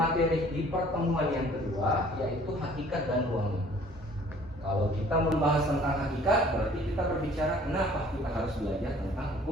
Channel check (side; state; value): both; normal; correlation 0.54